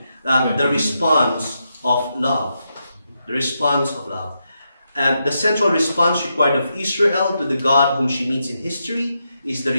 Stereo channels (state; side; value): inverted; both; correlation -0.84